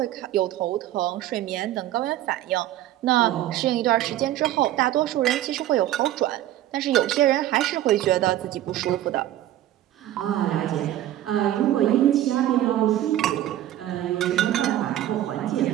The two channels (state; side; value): quieter; left; 13.2 dB